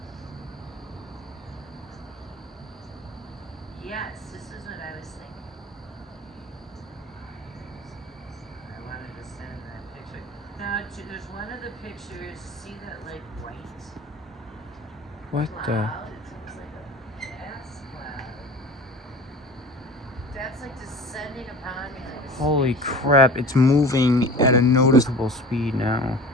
Yes, this is what I was thinking. I wanted to send that picture. Now, there's one of the pictures. See that like white What the? cloud? It's almost like a gas cloud. That's like descending upon me like a Holy spaceship. crap, it's moving at a noticeable speed now.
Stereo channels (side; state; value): both; normal; correlation 0.39